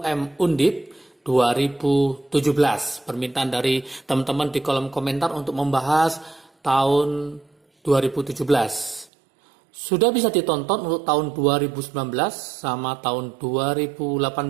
Undip 2017. Permintaan dari teman-teman di kolom komentar untuk membahas tahun 2017. Sudah bisa ditonton untuk tahun 2019 sama tahun 2018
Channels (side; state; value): left; drops out; at 9.1 s